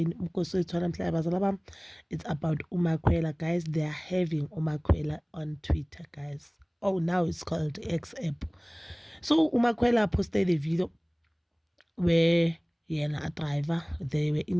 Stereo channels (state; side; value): identical; both; correlation 1.00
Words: Mkosi wethu namhlanje bazala bami. It's about Umakwela, guys. They are having Umakwela on Twitter, guys. Oh, now it's called X app. So Umakwela posted a video where a driver, they were